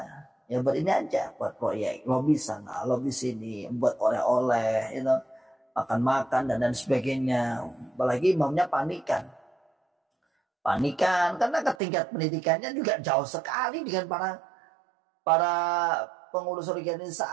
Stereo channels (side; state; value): left; drops out; at 11.8 s